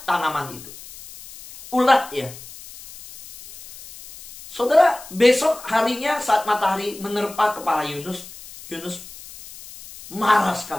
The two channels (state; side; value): noise; left; hiss, 17 dB below the sound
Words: tanaman itu. Ulat, ya. Saudara, besok harinya saat matahari menerpa kepala Yunus, Yunus marah